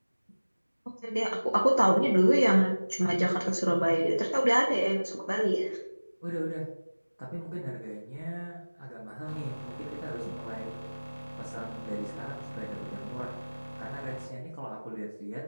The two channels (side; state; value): both; inverted; correlation -1.00